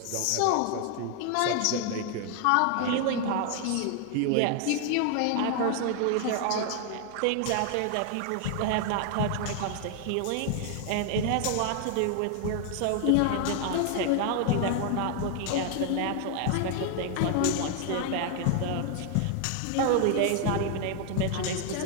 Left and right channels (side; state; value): both; different; correlation 0.00